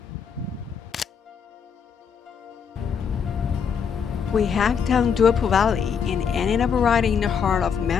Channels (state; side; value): quieter; right; 6.9 dB